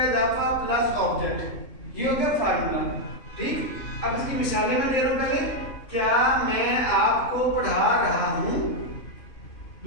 इजाफा प्लस ऑब्जेक्ट, ये हो गया फार्मूला। ठीक, अब इसकी मिसालें मैं दे रहा हूं। पहले, क्या मैं आपको पढ़ा रहा हूं।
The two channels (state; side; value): late; right; 3.7 ms